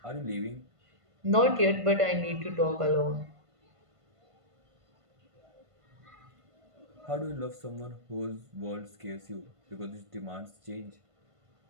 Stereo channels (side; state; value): left; late; 1.5 ms